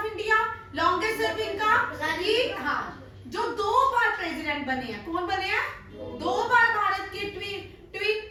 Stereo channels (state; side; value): identical; both; correlation 1.00